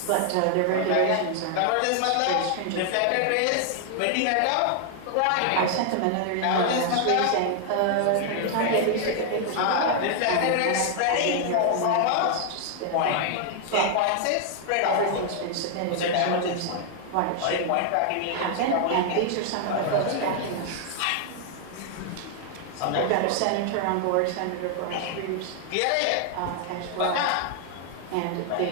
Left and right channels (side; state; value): both; different; correlation 0.00